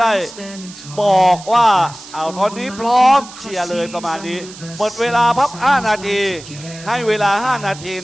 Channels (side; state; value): right; noise; hiss, 17 dB below the sound